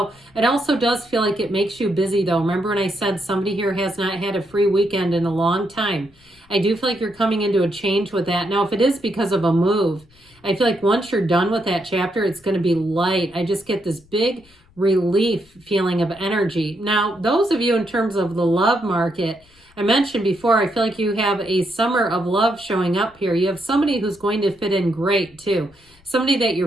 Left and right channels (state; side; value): noise; left; rumble, 30 dB below the sound